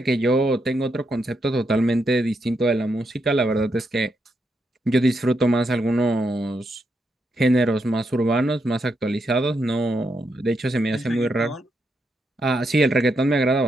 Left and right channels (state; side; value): normal; both; correlation 0.81